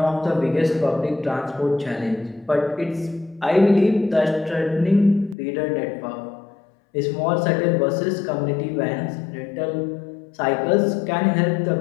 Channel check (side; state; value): right; drops out; at 5.4 s